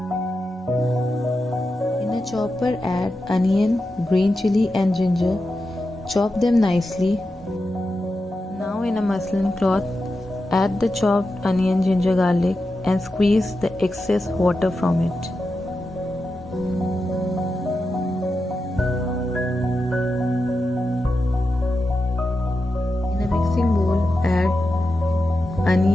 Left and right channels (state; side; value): normal; both; correlation 0.90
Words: in a chopper add onion, green chili and ginger. Chop them nicely. Now in a muslin cloth add the chopped onion, ginger, garlic and squeeze the excess water from it. In a mixing bowl add